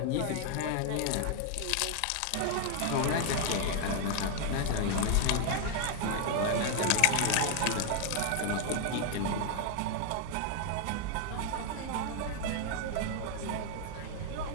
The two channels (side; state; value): both; different; correlation 0.00